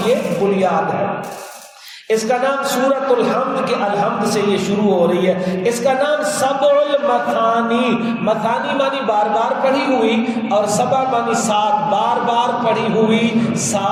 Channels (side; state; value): both; identical; correlation 1.00